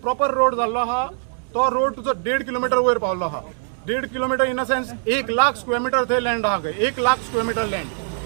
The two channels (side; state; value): left; silent; digital silence